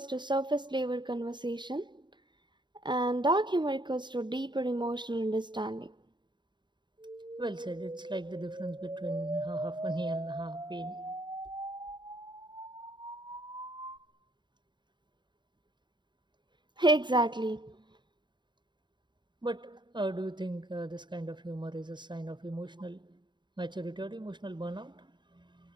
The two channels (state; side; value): late; left; 0.22 ms